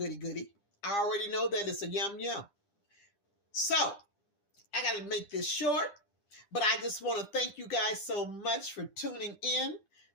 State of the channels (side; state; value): right; late; 9.9 ms